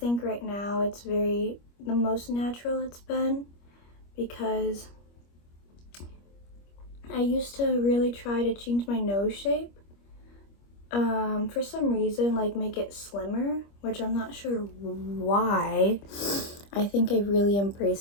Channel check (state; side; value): late; right; 25 ms